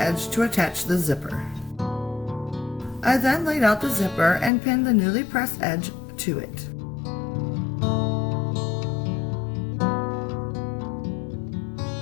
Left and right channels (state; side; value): drops out; right; at 4.5 s